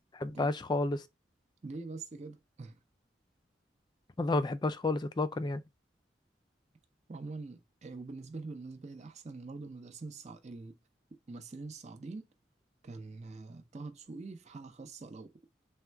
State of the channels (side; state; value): both; normal; correlation 0.67